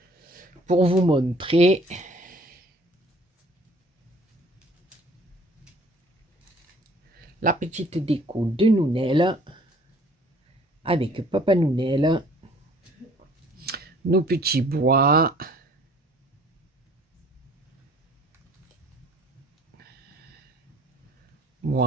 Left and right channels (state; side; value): normal; both; correlation 0.54